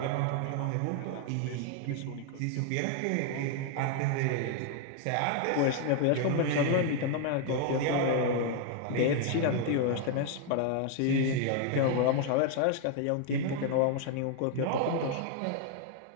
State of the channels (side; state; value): both; different; correlation 0.00